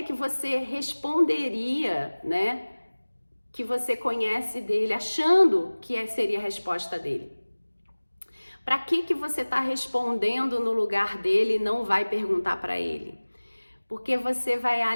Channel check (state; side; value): inverted; both; correlation -1.00